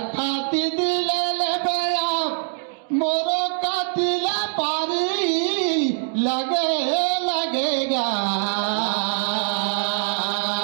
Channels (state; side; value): silent; left; digital silence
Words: दिले ले बया मोरो का दिला पारी लगेगा